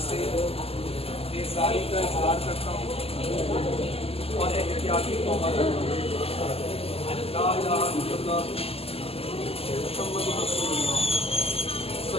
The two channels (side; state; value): right; late; 0.29 ms